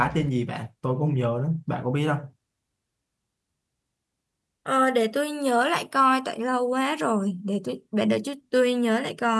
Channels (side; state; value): both; identical; correlation 1.00